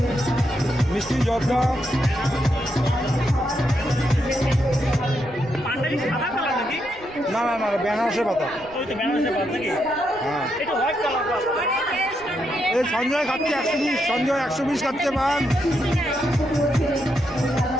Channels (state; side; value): noise; right; rumble, 23 dB below the sound